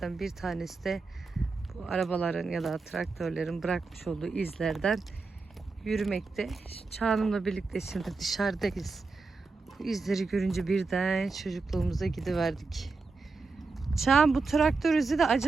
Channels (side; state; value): left; quieter; 4.1 dB